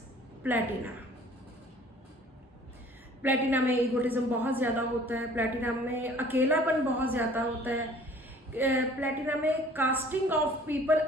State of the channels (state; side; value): normal; both; correlation 0.52